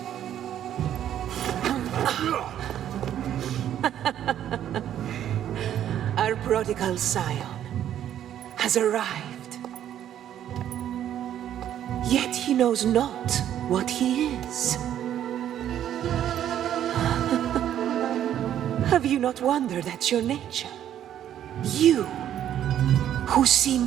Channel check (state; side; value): quieter; left; 10.8 dB